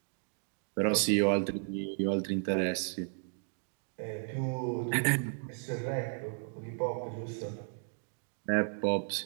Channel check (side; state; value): left; silent; digital silence